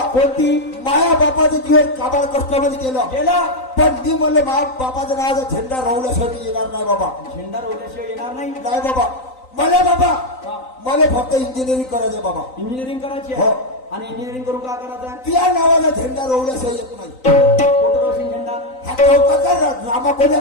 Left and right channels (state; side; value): late; right; 3.9 ms